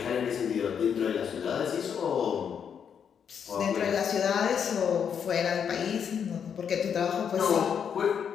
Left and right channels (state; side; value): quieter; right; 7.6 dB